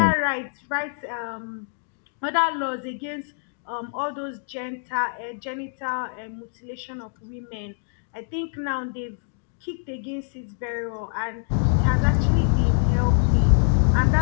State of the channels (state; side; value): silent; right; digital silence